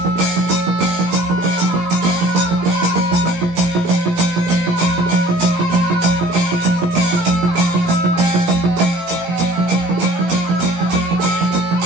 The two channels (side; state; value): left; late; 17 ms